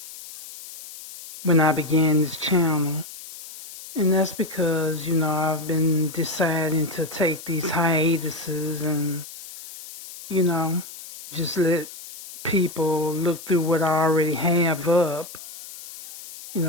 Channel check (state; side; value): noise; left; hiss, 15 dB below the sound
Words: when I began this channel. And that's because, I've been deciding to take these hiatuses and, you know, just let people look through what I already have up.